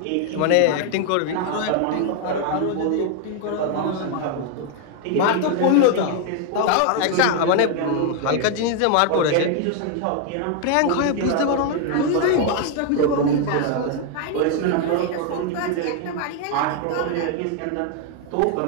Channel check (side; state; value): both; different; correlation 0.00